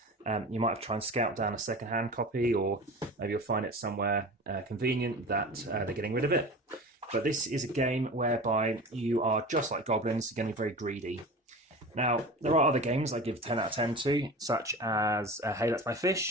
you might have to try and scout down a second-hand copy, or maybe you'll find it somewhere convenient that they're getting rid of it. But this is a game whereby you are just like goblins, you're going to be very greedy. Now, there are other games I give 10 out of 10 to, such as Hey, That's My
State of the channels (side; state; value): both; normal; correlation 0.34